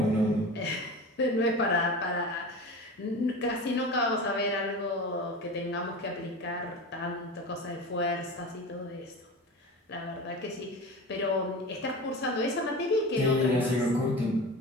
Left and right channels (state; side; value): normal; both; correlation 0.31